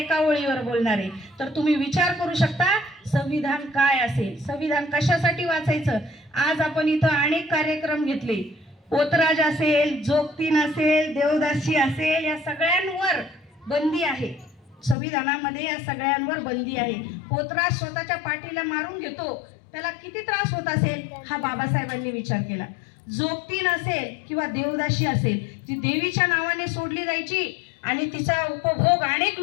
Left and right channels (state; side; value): drops out; right; at 15.0 s